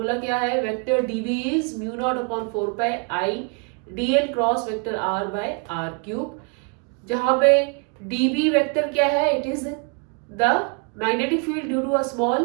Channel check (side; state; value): left; quieter; 37.0 dB